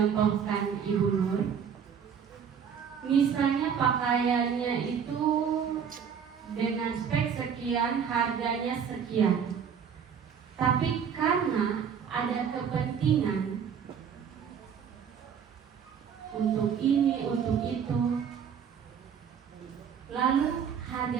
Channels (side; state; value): left; quieter; 7.4 dB